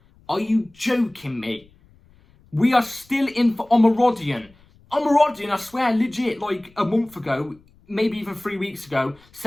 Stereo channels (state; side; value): noise; left; rumble, 29 dB below the sound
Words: Are you joking me? We are still in for Omorodion. Omorodion, I swear, legit, like a month ago... maybe even 3 weeks ago,